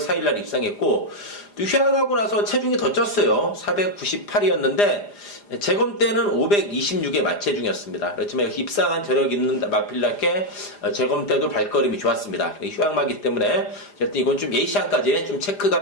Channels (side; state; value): right; late; 4.9 ms